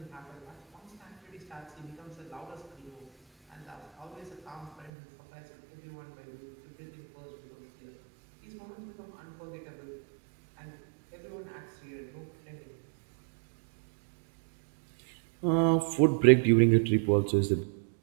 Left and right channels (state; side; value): drops out; left; at 4.9 s